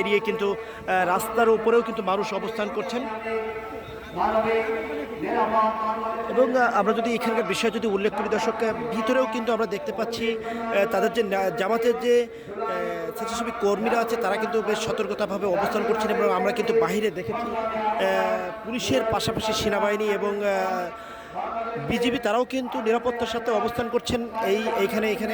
কিন্তু রাস্তার উপরেও কিন্তু মানুষ অবস্থান করছেন। এবং আমরা যদি এখানকার বিষয় যদি উল্লেখ করি দর্শক, ভিতরেও কিন্তু আমরা দেখতে পাচ্ছি তাদের যে জামাতের যে স্বেচ্ছাসেবী কর্মীরা আছে তারা কিন্তু বেশ সতর্কতাভাবে অবস্থান করছেন। এবং আমরা কিন্তু বাহিরে দেখেছি পুলিশের পাশাপাশি সেনাবাহিনী এবং বিজিবি তারাও কিন্তু নিরাপত্তার সাথে অবস্থান করছেন এখানে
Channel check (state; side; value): identical; both; correlation 1.00